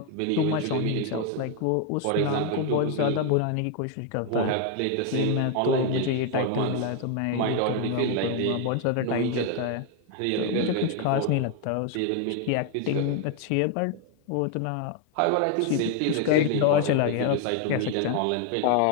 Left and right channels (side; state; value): both; different; correlation 0.01